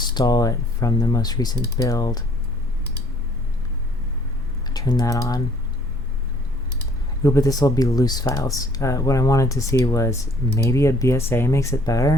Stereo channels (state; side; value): normal; both; correlation 0.59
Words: it from the most recent build. Turn that on. Ooh, but this will be loose files. What I wanted to see was maybe a BSA makes it